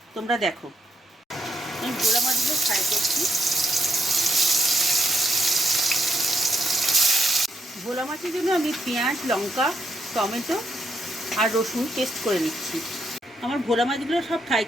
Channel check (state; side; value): normal; both; correlation 0.77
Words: তোমরা দেখো। আমি ভোলা মাছগুলো ফ্রাই করছি। ভোলা মাছের জন্য আমি পেঁয়াজ, লঙ্কা, টমেটো আর রসুন পেস্ট করে নিচ্ছি। আমার ভোলা মাছগুলো সব ফ্রাই